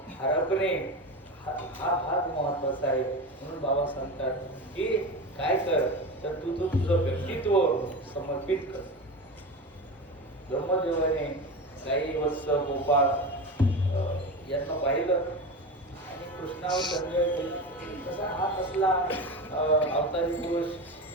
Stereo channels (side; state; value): both; normal; correlation 0.25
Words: हरपणे हा भाग महत्वाचा आहे. म्हणून बाबा सांगतात की काय कर तर तू तुझं व्यक्तित्व समर्पित कर. ब्रह्मदेवाने गाई वत्स गोपाळ यांना पाहिलं आणि कृष्णावर संजय कसा हा कसला अवतारी पुरुष